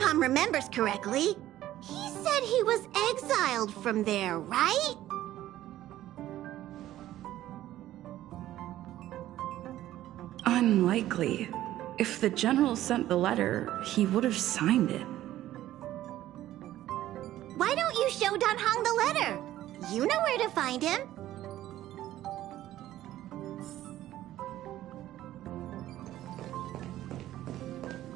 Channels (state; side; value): quieter; left; 13.9 dB